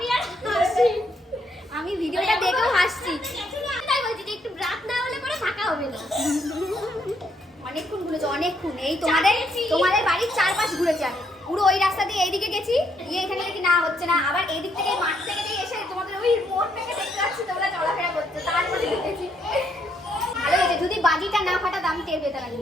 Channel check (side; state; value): both; normal; correlation 0.73